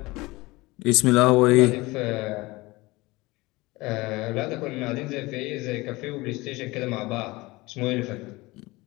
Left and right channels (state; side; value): quieter; right; 21.7 dB